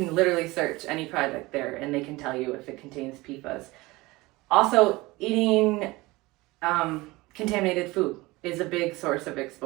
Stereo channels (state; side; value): quieter; left; 21.4 dB